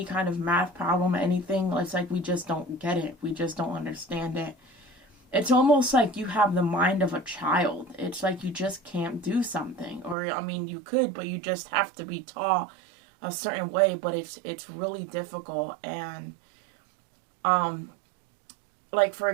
kind of math problem, anything, it's like we just don't get it. We just don't understand it. It's almost like you have the mind of a child. It's like you just can't do something. Or, I mean, you could, but you just have to be taught a certain way. But it's really difficult. And, like, for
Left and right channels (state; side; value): drops out; left; at 10.2 s